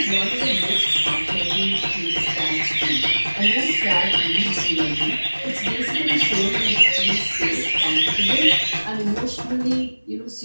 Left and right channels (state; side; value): inverted; both; correlation -1.00